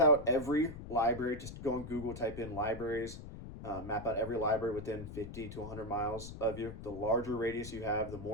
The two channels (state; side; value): noise; left; rumble, 11 dB below the sound